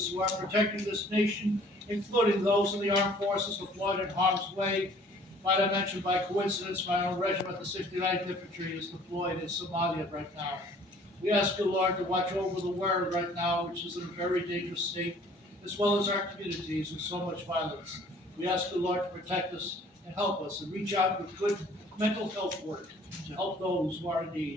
who are protecting this nation, including those in the armed forces deployed in harm's way. Might I mention by coincidence, my own regiment, the 69th Infantry, is deployed in Somalia right now. We ask you, Lord, to watch over the world right now, which is in a very dangerous state, as well as our communities with so much violence. We ask you, Lord, to protect us and help us and reach out with good mental health work to help those who are in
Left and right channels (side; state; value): both; normal; correlation 0.54